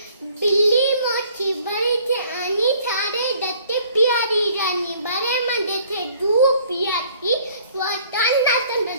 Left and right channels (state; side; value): inverted; both; correlation -0.57